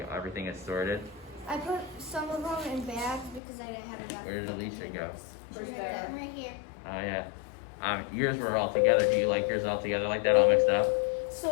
everything is sorted. I put some of them in bags because I didn't have enough. Where did Alicia go? She's Right right there. there. Right here. Oh yeah. Yours were all together. Do you like yours all together like that, all mixed up?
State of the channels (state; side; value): drops out; right; at 3.4 s